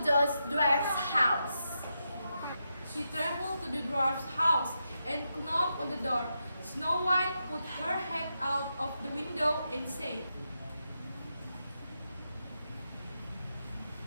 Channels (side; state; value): both; inverted; correlation -0.85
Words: those dwarfs' house. She traveled to the dwarf's house and knocked on the door. Snow White put her head out of the window and said,